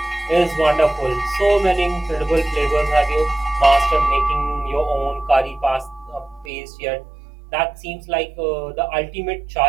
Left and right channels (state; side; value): drops out; left; at 6.5 s